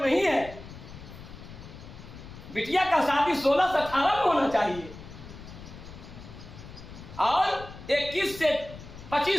नहीं है। बिटिया का शादी 16 से 18 में होना चाहिए और 21 से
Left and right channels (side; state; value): left; noise; rumble, 15 dB below the sound